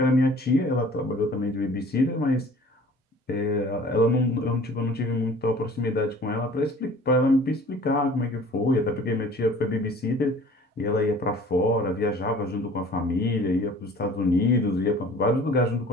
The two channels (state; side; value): normal; both; correlation 0.48